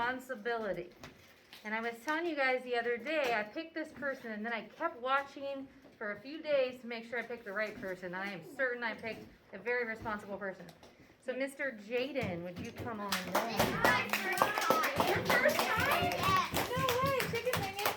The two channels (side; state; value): both; identical; correlation 1.00